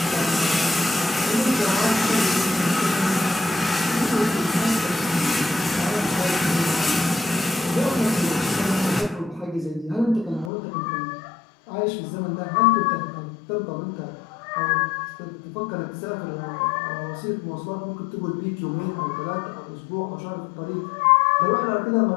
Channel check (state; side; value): drops out; right; at 10.5 s